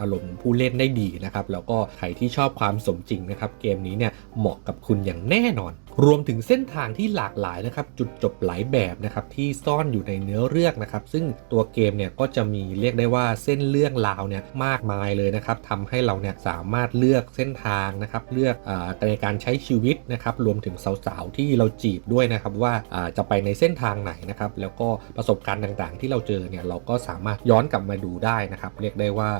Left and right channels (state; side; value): silent; left; digital silence